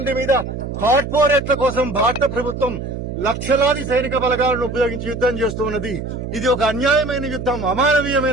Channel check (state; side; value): noise; right; hum, 6 dB below the sound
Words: మీద కార్పొరేట్ల కోసం భారత ప్రభుత్వం లక్షలాది సైనిక బలగాలను ఉపయోగించి యుద్దం చేస్తూ ఉన్నది. ఇది ఒక అన్యాయమైన యుద్దం,